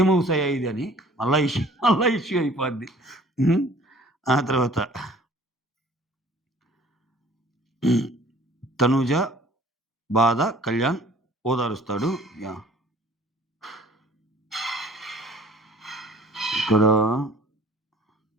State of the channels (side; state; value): both; normal; correlation 0.52